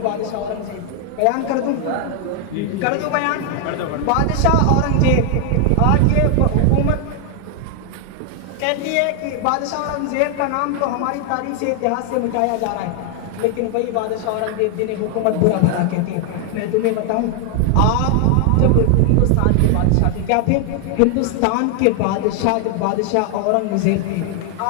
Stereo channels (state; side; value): different; both; correlation 0.00